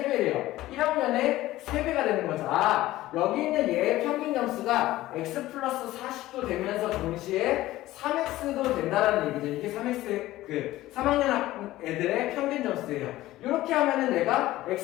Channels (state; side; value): quieter; right; 16.2 dB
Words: 1학년의 3배가 되는 거죠. 여기 있는 얘의 평균 점수가 x 플러스 40도 되면서 동시에 3x도 된다라는 얘기죠. 이게 3x, 3학년 애들의 평균 점수예요. 이렇게 하면은 내가